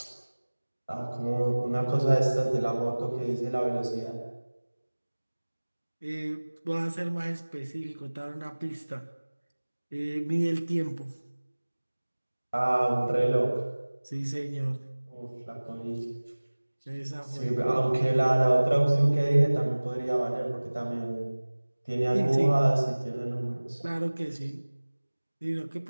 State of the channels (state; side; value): inverted; both; correlation -1.00